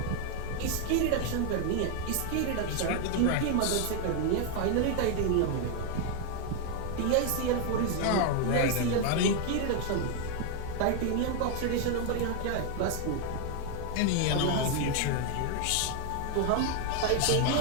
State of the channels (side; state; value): both; different; correlation 0.01